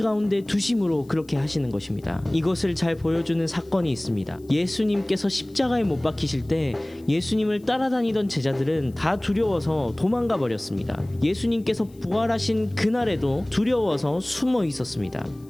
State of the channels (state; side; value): noise; left; hiss, 29 dB below the sound